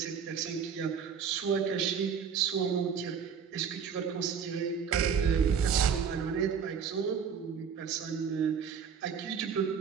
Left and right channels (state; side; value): quieter; left; 6.9 dB